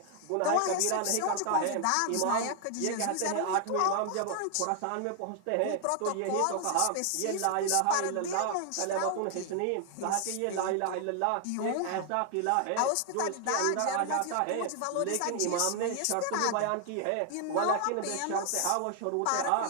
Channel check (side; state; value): both; different; correlation 0.00